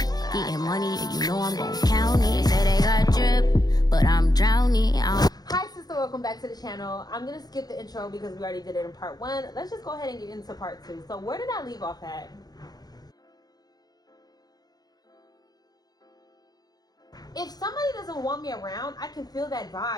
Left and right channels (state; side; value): late; right; 0.19 ms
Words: Getting money, and you know I'm gon' count it. They say they got drip, but I'm drowning. Hi sister, welcome back to the channel. I'm gonna skip the intro because we already did it in part 1. Let's just go ahead and get into part 2. So where did I leave off at? If somebody doesn't want me around, I can feel that